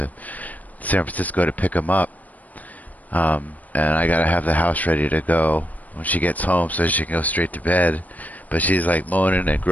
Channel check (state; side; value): late; right; 0.076 ms